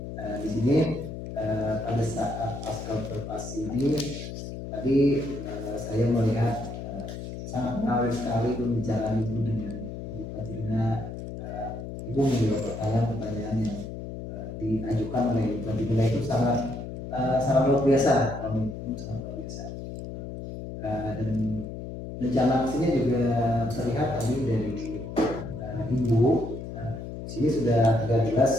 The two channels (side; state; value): left; noise; hum, 8 dB below the sound